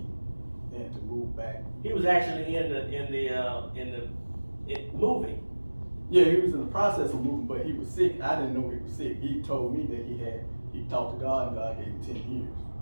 and to move back. He was actually in moving. Yeah, he was in the process of moving, but he was sick. I didn't know he was sick. He told me that he talked to God, and God gave him 10 years.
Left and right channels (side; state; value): both; inverted; correlation -1.00